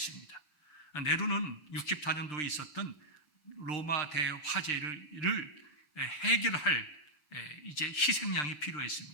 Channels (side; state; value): right; late; 6.7 ms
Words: 네로는 64년도에 있었던 로마 대화재를 해결할 이제 희생양이